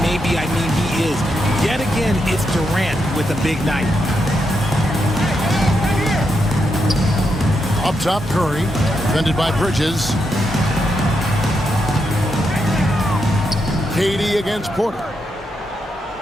I mean he is. Yet again, it's Durant with a big night. Up top, Curry. Defended by Bridges. KD against Porter.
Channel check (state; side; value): normal; both; correlation 0.83